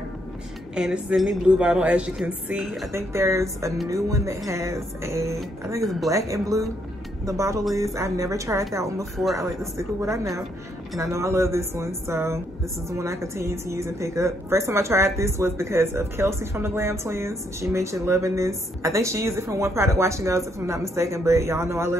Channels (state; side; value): normal; both; correlation 0.73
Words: and this is in the blue bottle. As you can see, I think there's a new one that has a, I think it's black and blue, the bottle is. I've never tried that one before. I like to stick with what I know, and I know I love this one, so this is the one I continue to use and pick up. First time I tried this was because of Kelsey from the Glam Twins. She mentioned loving this. I think she used it from One Product Wash and Goes, if I'm not mistaken, but y'all know I